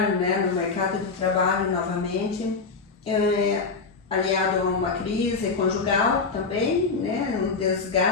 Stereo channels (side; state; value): right; quieter; 4.6 dB